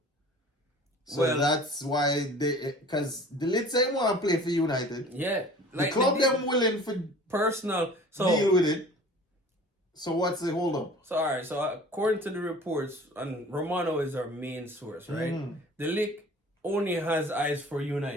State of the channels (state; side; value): normal; both; correlation 0.46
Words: So that's why because De Ligt ain't want to play for United. Yeah. The club them willing for personal deal with it. So what's the hold up? So alright, so according to the reports, and Romano is our main source, right? De Ligt only has eyes for